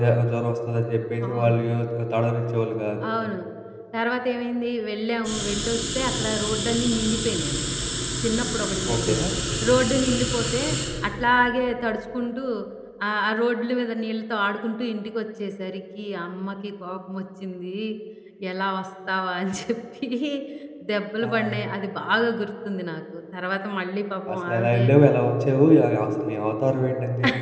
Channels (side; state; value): both; identical; correlation 1.00